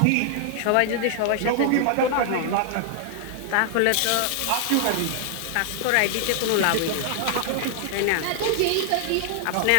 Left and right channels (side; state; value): both; different; correlation 0.00